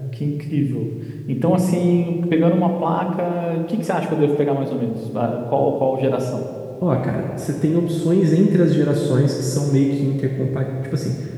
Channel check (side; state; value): both; identical; correlation 1.00